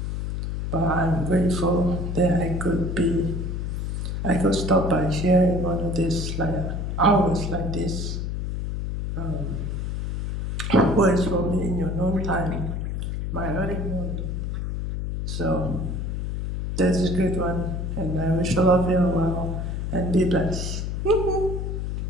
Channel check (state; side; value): noise; left; hum, 3 dB below the sound